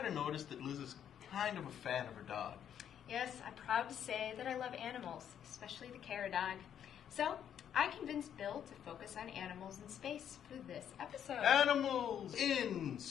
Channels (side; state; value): right; quieter; 9.3 dB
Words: have noticed that Liz is kind of a fan of her dog. Yes, I'm proud to say that I love animals, especially the Cara dog. So, I convinced Bill to focus on animals in space for this episode. Animals in